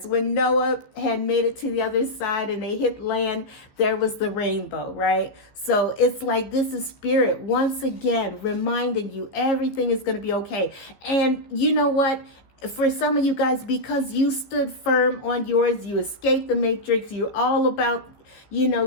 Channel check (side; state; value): right; late; 14 ms